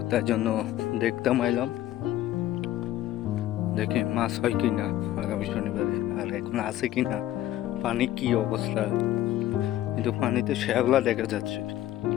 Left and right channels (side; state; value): right; quieter; 13.7 dB